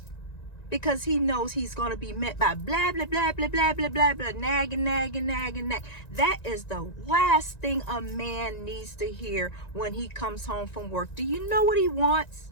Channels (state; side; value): late; right; 1.9 ms